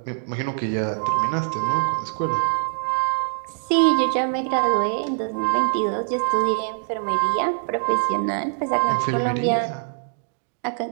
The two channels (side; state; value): left; silent; digital silence